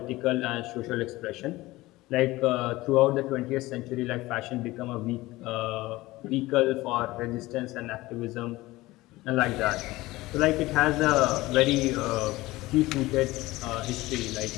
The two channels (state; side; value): quieter; right; 19.0 dB